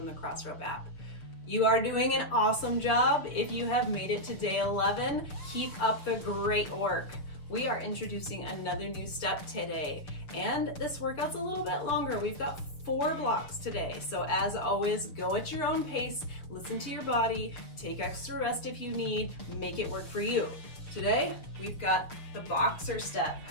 the Crossrope app. You are doing an awesome job. If you have made it to day 11, keep up the great work. We are introducing another new step today, and this workout's a little bit longer. We've got 4 blocks today. So as always, go at your own pace, listen to your body, take extra rest if you need, make it work for you. Today, we've got the boxer step.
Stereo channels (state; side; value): late; right; 6.5 ms